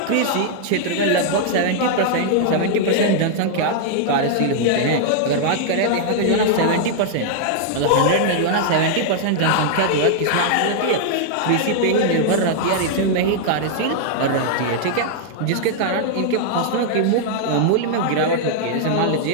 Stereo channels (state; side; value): different; both; correlation -0.01